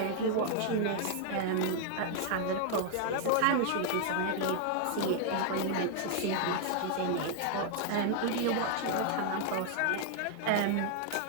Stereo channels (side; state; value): both; different; correlation 0.00